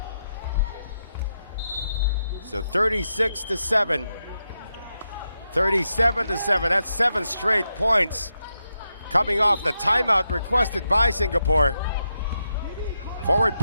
So 36-7. 37-7. That's 7 straight points coming off the timeout requested by Singapore. Forward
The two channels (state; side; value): inverted; both; correlation -0.85